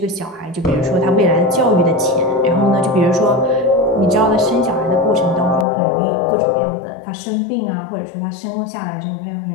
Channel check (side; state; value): right; drops out; at 5.7 s